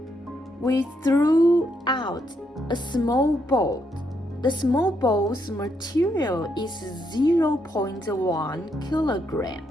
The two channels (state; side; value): normal; both; correlation 0.77